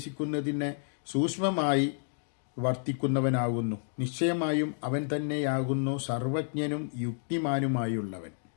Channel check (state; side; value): silent; right; digital silence